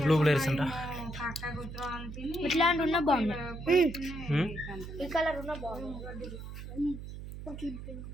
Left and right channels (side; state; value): right; noise; hum, 10 dB below the sound